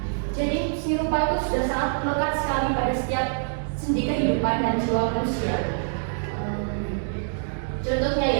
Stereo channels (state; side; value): silent; left; 61 dB below the other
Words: Jadi seni rupa itu sudah sangat melekat sekali pada setiap sendi kehidupan dan jiwa manusia. Contohnya